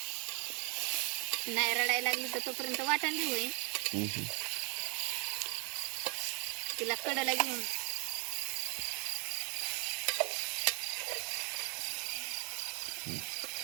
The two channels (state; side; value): quieter; left; 33.1 dB